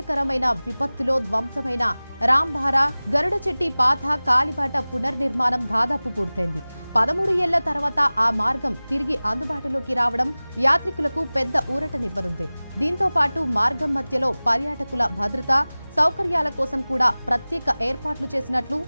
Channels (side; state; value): both; inverted; correlation -0.99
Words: విపత్తులో ధ్వంసమైన రాంబారా గరుడచెట్టి పాత కాలిబాట పునర్నిర్మాణం దాదాపు పూర్తయింది. 13 ఏళ్ల తర్వాత ఆ మార్గం తిరిగి అందుబాటులోకి రావడం యాత్రికులకు పెద్ద ఊరటనివ్వనుంది. దీంతో పాటు మార్గం మధ్యలో పర్యాటకుల భద్రత, సౌకర్యాల కోసం కూడా ప్రత్యేక ఏర్పాట్లు చేసినట్లు